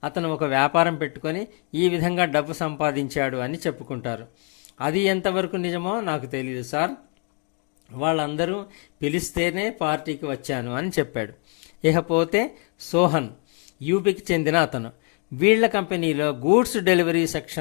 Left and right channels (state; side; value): quieter; right; 39.2 dB